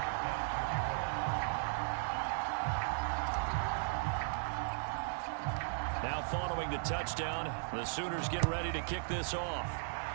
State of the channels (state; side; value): silent; left; digital silence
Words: Now following the touchdown, the Sooners get ready to kick this off.